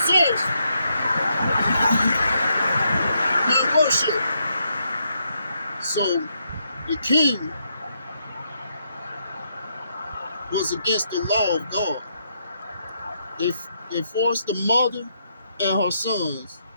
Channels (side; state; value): both; inverted; correlation -0.78